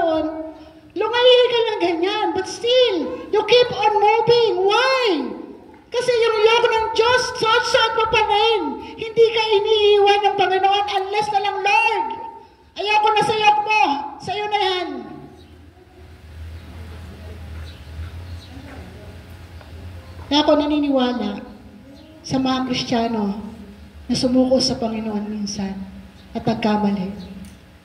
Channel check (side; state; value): both; identical; correlation 1.00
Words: lumayi ka lang ganyan, but still, you keep on moving. Why? Kasi yung yoke ng Diyos, suot mo pa rin. Hindi ka iniiwan ng Panginoon unless na lang, Lord, ayoko na sa yoke mo, sa'yo na yan. Kaya ako naniniwala sa mga Kristiyano na sumuko sa Panginoon minsan at nagkamali,